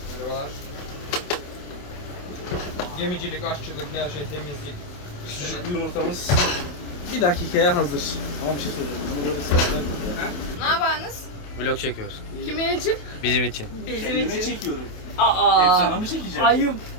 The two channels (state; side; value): late; right; 28 ms